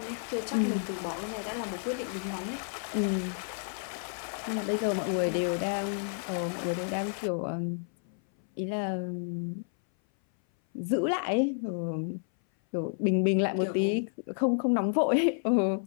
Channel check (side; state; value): right; silent; 57 dB below the other